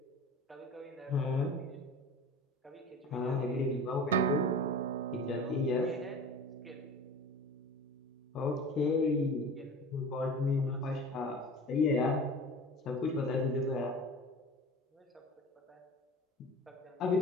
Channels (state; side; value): normal; both; correlation 0.37